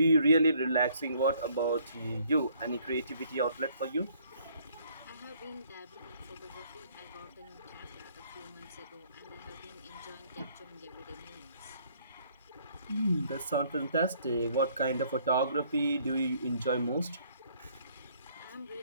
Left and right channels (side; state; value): both; inverted; correlation -0.63